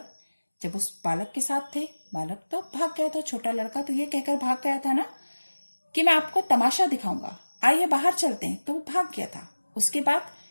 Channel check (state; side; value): inverted; both; correlation -1.00